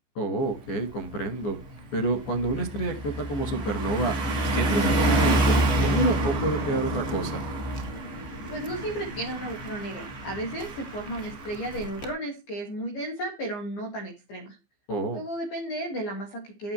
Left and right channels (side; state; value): right; late; 15 ms